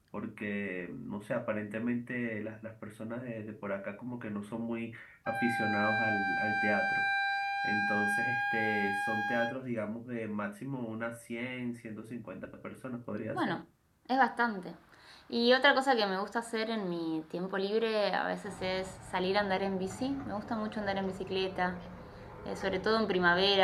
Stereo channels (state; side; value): identical; both; correlation 1.00